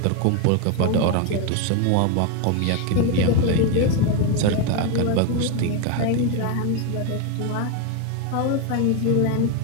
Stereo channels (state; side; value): different; both; correlation 0.02